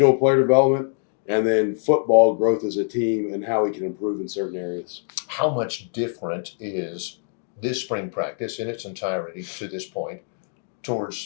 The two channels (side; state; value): right; silent; 63 dB below the other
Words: player development and then football growth as a team and how we can improve in certain areas. How much different is this spring practice in its entirety to this point